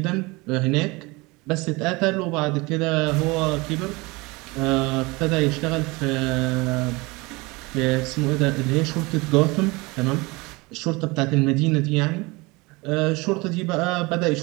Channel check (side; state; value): left; quieter; 24.5 dB